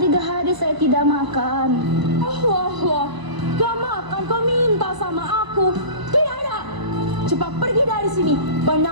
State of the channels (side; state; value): left; late; 1.0 ms